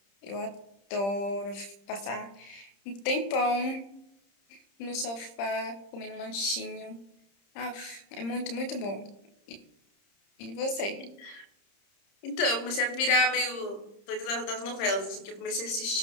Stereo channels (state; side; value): late; right; 30 ms